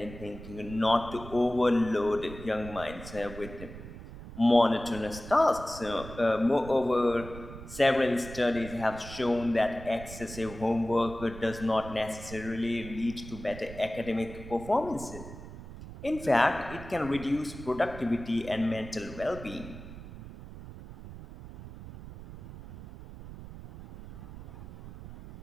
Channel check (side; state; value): right; noise; rumble, 13 dB below the sound